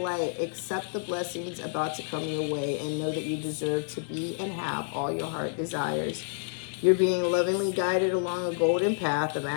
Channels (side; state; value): right; silent; 59 dB below the other